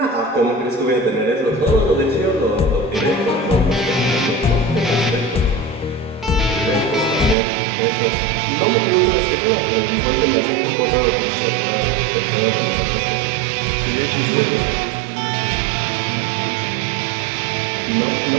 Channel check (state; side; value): drops out; left; at 7.4 s